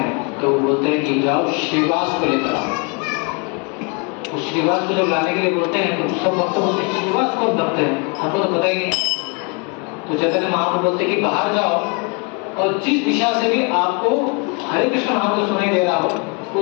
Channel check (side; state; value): right; quieter; 33.7 dB